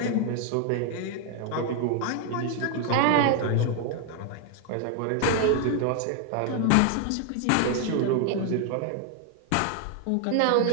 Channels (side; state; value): both; different; correlation 0.00